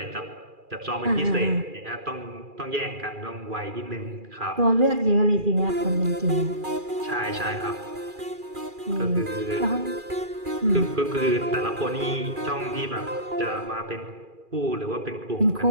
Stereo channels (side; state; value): left; late; 2.4 ms